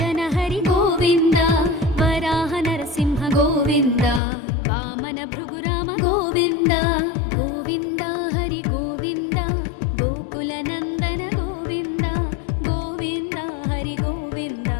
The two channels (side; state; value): right; drops out; at 4.2 s